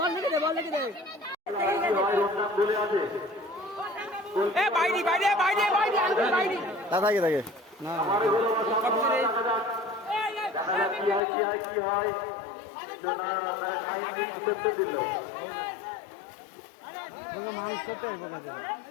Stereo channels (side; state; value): right; drops out; at 11.2 s